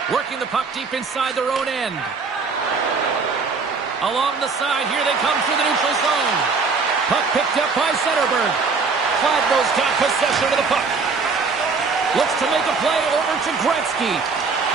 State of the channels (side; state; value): left; quieter; 4.7 dB